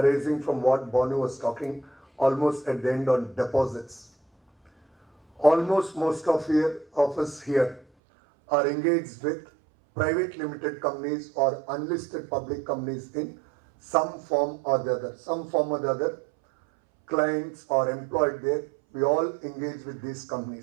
from what Bonu was talking almost at the end on deposits. Almost most of us here are engaged with private limited companies or unlisted public companies in some form or the other. Some form or the other, clients or employed there, we all engage with these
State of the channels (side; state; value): left; drops out; at 7.9 s